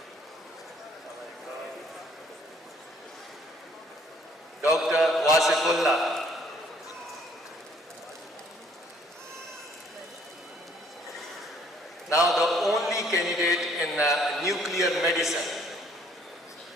Dr. Wasifullah. Now the only candidate in nuclear medicine,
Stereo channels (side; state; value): both; normal; correlation 0.62